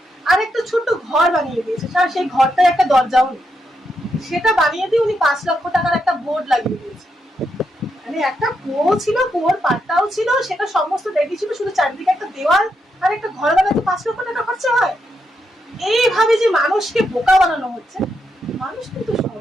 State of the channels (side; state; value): both; normal; correlation 0.82